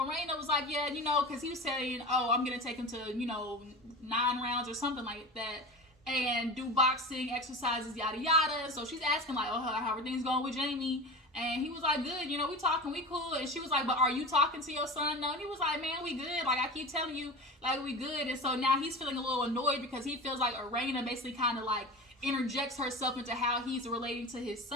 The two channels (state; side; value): normal; both; correlation 0.31